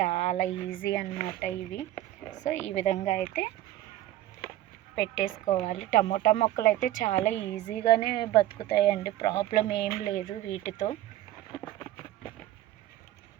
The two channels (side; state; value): left; quieter; 14.2 dB